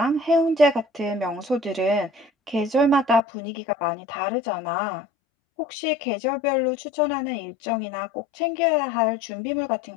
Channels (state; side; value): drops out; right; at 3.2 s